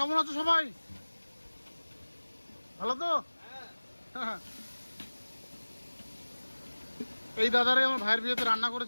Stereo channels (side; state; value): both; inverted; correlation -1.00